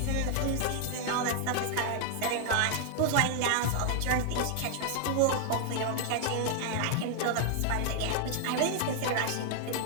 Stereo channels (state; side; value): different; both; correlation 0.00